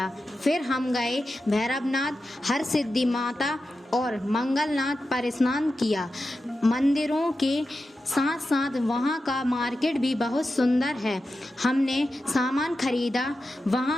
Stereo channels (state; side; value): normal; both; correlation 0.91